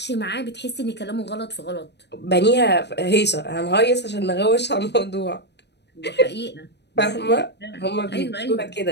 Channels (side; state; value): right; late; 0.50 ms